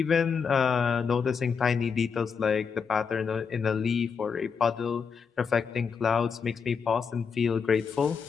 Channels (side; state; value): right; quieter; 6.1 dB